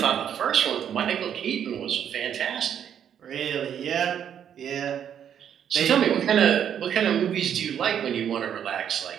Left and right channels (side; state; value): left; quieter; 9.0 dB